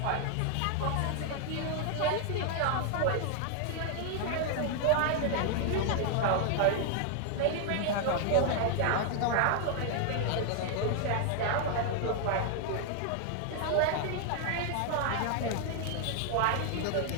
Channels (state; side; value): different; both; correlation 0.00